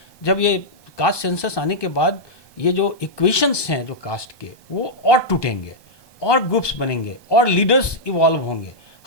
जब ये कास्ट सेंसस आने के बाद ये जो इक्वेशंस हैं जो कास्ट के, वो और टूटेंगे, और ग्रुप्स बनेंगे, और लीडर्स इवॉल्व होंगे।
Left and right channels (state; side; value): late; right; 1.2 ms